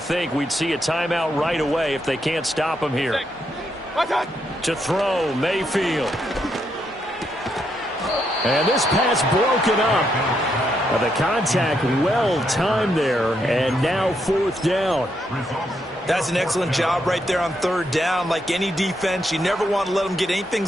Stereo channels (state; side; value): normal; both; correlation 0.78